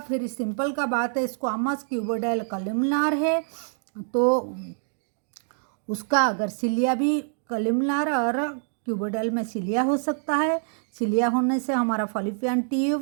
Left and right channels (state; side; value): silent; left; digital silence